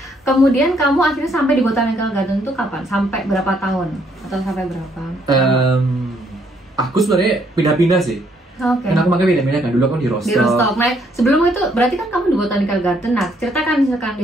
kemudian kamu akhirnya sampai di Botanical Garden itu kapan? Sampai berapa tahun? Atau sampai berapa? Aku sebenarnya pindah-pindah sih. Oke. Karena aku makanya pindah-pindah kan. Dulu aku di Rostock. Di Rostock. Nah, sebelum itu berarti kan kamu di Botanical Garden. Nah, ceritakan misalkan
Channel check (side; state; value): both; normal; correlation 0.69